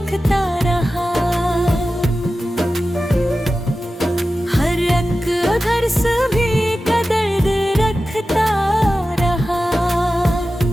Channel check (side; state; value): both; normal; correlation 0.94